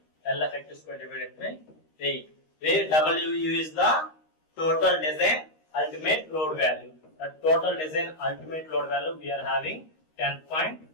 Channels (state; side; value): late; right; 13 ms